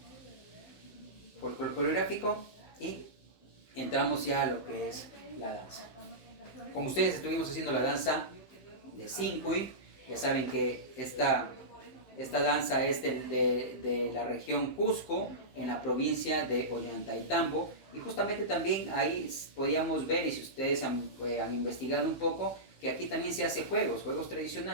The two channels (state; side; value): late; right; 15 ms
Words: coreográfico, y entramos ya a lo que es la danza. con ustedes estuvimos haciendo la danza de Sincuy. Ya saben que esta danza es de la región Cusco, en la provincia de Ollantaytambo. Y justamente también ahí podíamos ver, y si ustedes han investigado un poco, que aquí también se hace juegos